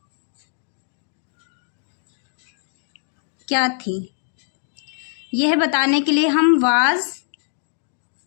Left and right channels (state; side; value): silent; right; digital silence